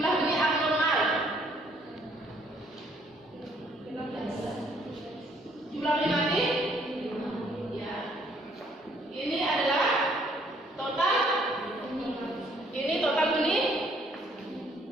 benih abnormal. Jumlah benih mati? Ya. Ini adalah total. Ini total benih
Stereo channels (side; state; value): both; normal; correlation 0.64